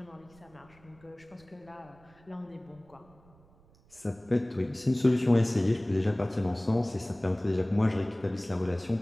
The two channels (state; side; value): noise; right; rumble, 28 dB below the sound